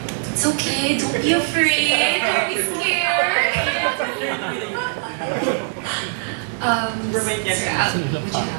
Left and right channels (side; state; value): left; silent; 65 dB below the other